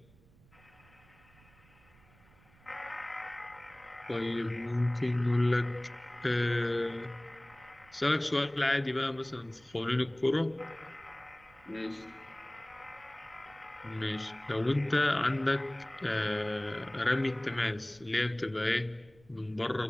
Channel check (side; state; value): right; noise; rumble, 28 dB below the sound